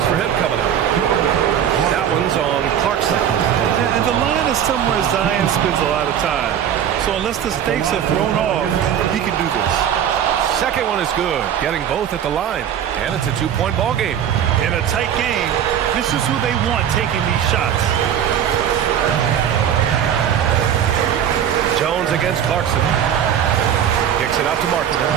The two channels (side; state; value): left; quieter; 9.4 dB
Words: for him coming up. That one's on Clarkson. And the line is somewhere Zion spends a lot of time. So unless the stakes are thrown off, he can do this. Second one is good, getting both at the line. And it's a 2-point ball game. In a tight game, this is who they want taking these shots. Jones against Clarkson. Kicks it out to